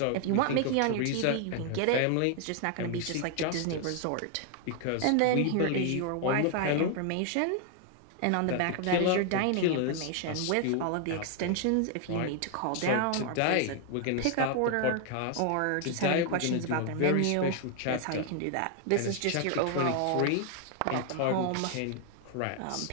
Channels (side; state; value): both; different; correlation 0.00